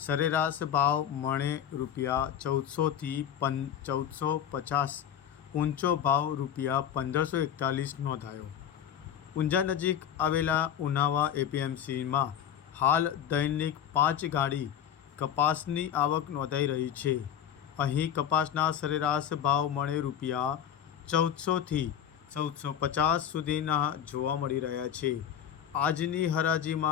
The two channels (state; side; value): quieter; right; 9.5 dB